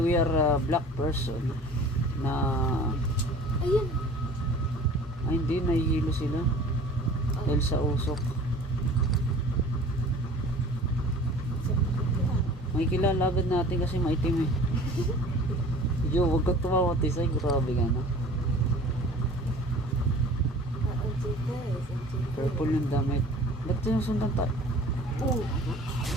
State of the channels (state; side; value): normal; both; correlation 0.45